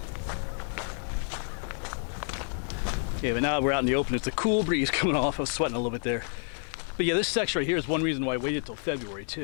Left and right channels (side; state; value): right; silent; 58 dB below the other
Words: Yeah, but now we're out in the open. It's a cool breeze coming off. I was sweating a little bit there. But yeah, this section right here is one reason why I waited till February